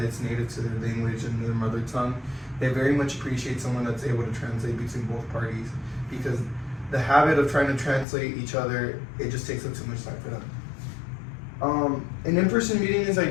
is native to their language and their mother tongue. They very much appreciate someone that's able to translate between both parties because the habit of trying to translate each other, it just takes up too much time for them. An in-person meeting is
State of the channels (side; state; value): right; drops out; at 8.1 s